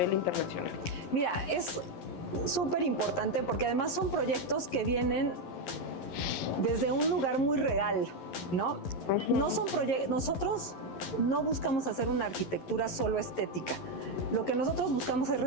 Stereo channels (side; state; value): right; late; 11 ms